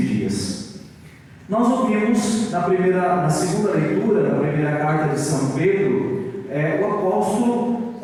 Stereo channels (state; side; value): identical; both; correlation 1.00